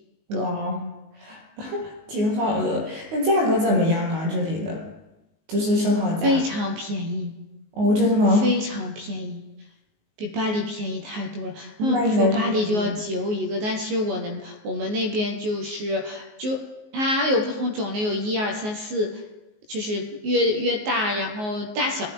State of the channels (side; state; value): left; late; 19 ms